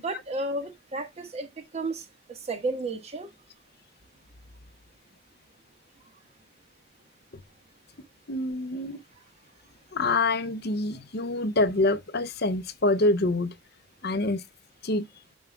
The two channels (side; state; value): both; normal; correlation 0.16